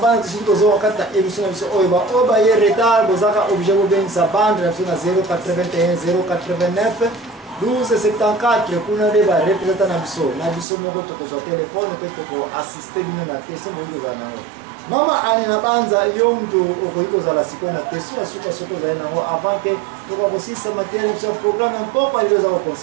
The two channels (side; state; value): left; drops out; at 10.7 s